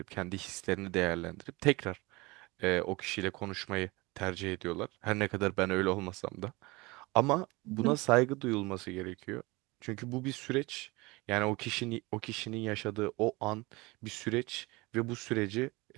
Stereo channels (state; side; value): quieter; left; 23.6 dB